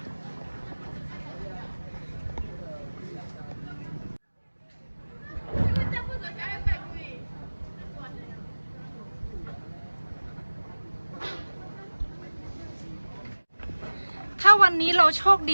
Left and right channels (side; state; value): both; inverted; correlation -1.00